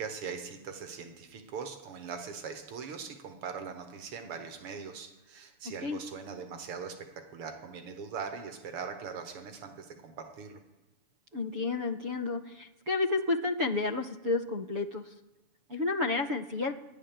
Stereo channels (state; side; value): late; left; 7.0 ms